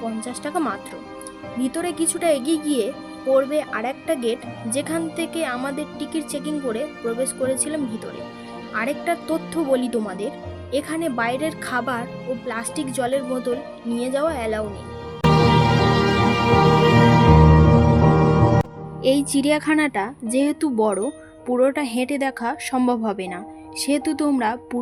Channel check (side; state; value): both; identical; correlation 1.00